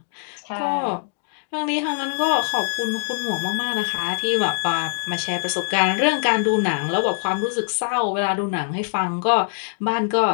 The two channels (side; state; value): right; silent; digital silence